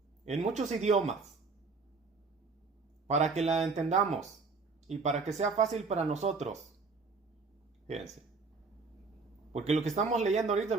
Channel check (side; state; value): left; quieter; 4.3 dB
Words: en muchos idiomas para que la entendamos y para que sea fácil para nosotros. Fíjense. Porque lo que estamos leyendo ahorita